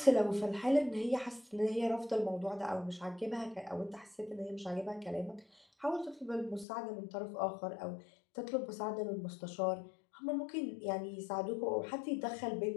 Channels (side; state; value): right; drops out; at 6.7 s